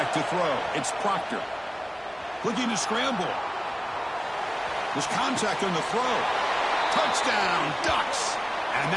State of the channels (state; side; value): identical; both; correlation 1.00